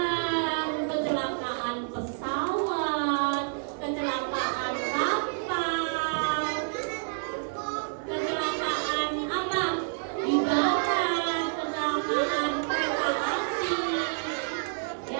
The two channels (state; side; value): silent; left; digital silence